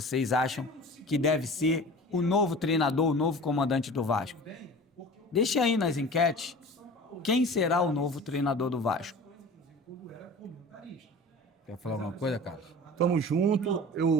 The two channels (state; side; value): normal; both; correlation 0.39